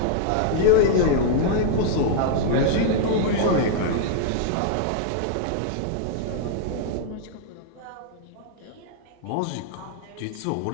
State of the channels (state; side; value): different; both; correlation -0.01